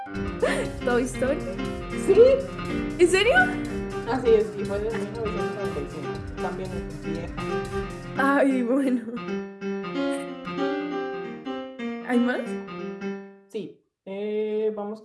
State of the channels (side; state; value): both; identical; correlation 1.00